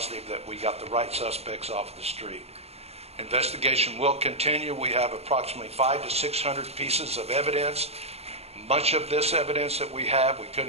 that we got the right suspects off the street. Investigation will continue. We have approximately 500 to 600 pieces of evidence. Much of this evidence that we have, we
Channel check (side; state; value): left; late; 0.30 ms